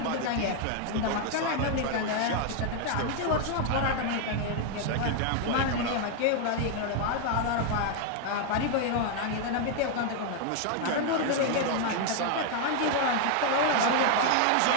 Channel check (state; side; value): different; both; correlation 0.00